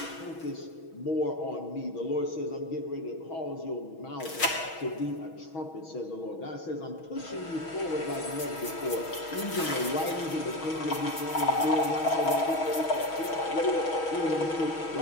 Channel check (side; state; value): right; late; 6.2 ms